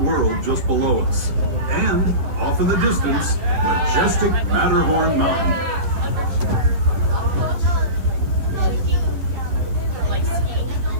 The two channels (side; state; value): left; late; 11 ms